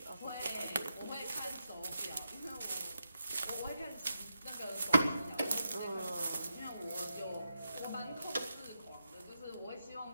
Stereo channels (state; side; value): inverted; both; correlation -0.85